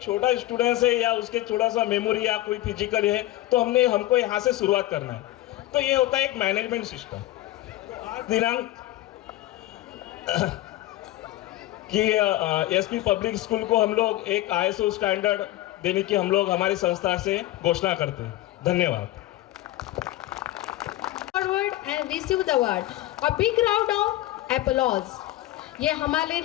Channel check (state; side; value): quieter; right; 15.8 dB